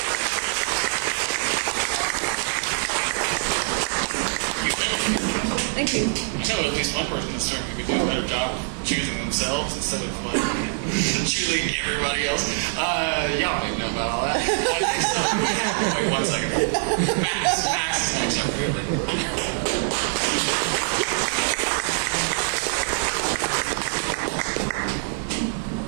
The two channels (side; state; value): left; silent; digital silence